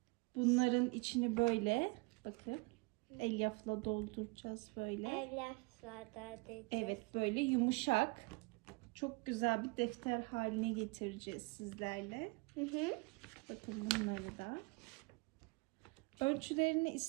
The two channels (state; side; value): quieter; left; 28.1 dB